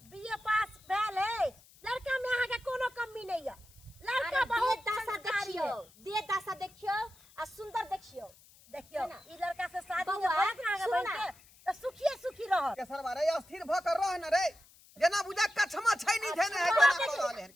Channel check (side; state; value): left; noise; hiss, 26 dB below the sound